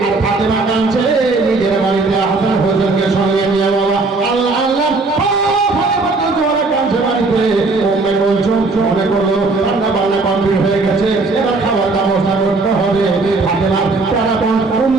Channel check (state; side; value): quieter; left; 3.6 dB